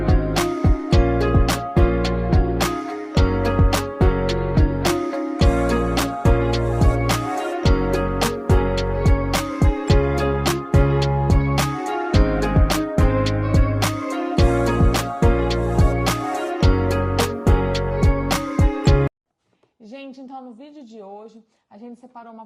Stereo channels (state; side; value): identical; both; correlation 1.00